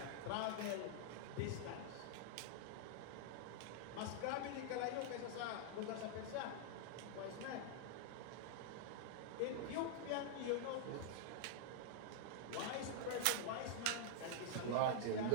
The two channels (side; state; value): both; different; correlation -0.01